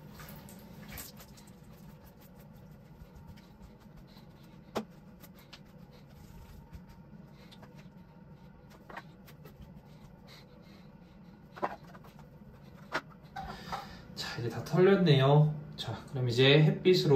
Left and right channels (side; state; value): both; identical; correlation 1.00